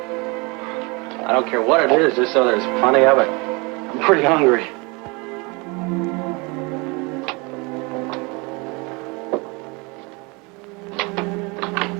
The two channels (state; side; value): quieter; left; 28.2 dB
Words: I don't care what it is, just so there's plenty of it. I'm pretty hungry.